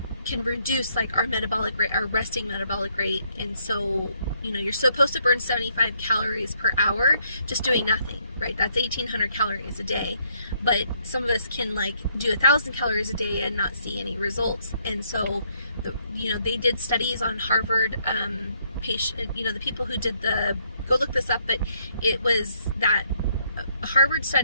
can reduce our metabolic rate, our resting metabolic rate, and so you're supposed to burn 75 calories per hour just doing nothing, right? That's 1,800 calories a day, but some of us can do 1,000 calories a day and not see any results. And so they did studies on Harvard patient, the people who did go look this up, but it was that a Harvard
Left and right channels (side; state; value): both; inverted; correlation -0.70